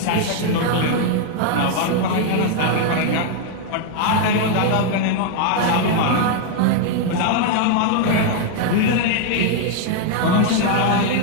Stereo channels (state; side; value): different; both; correlation 0.00